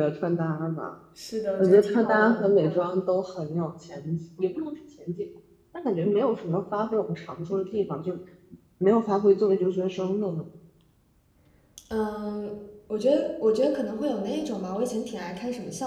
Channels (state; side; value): identical; both; correlation 1.00